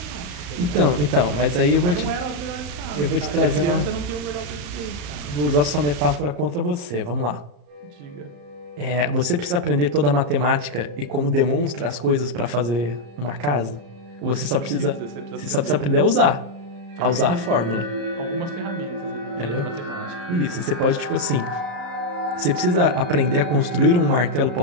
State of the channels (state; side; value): late; left; 34 ms